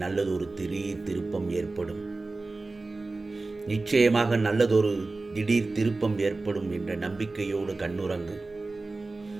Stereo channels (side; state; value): left; quieter; 3.4 dB